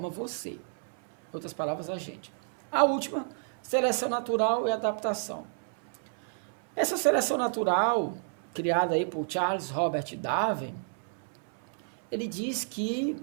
você. Em outras palavras, a gente. A última, seleção natural e adaptação. Essa seleção natural, criada aí por Charles Robert Darwin, ele diz que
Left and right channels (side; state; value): left; silent; 56 dB below the other